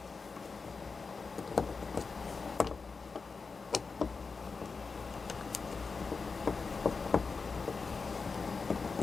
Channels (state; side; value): quieter; right; 4.7 dB